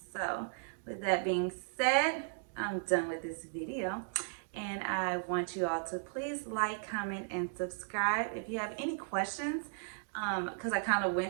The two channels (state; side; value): silent; left; digital silence